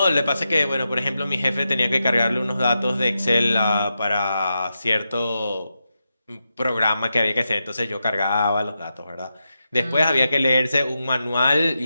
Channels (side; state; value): both; inverted; correlation -0.88